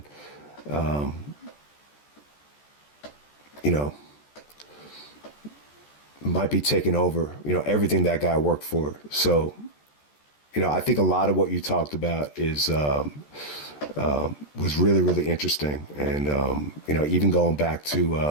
you know, might be taking over, you know, everything that guy worked for. So, you know, I think a lot of what you talked about is, was really interesting. And, you know, even going back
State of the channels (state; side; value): late; right; 14 ms